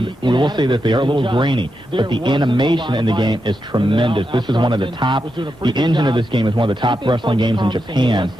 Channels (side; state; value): both; normal; correlation 0.86